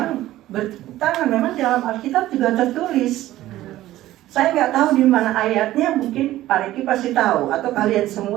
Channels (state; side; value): quieter; left; 15.0 dB